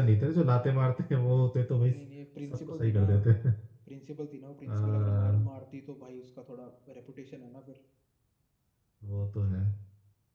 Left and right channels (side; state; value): both; identical; correlation 1.00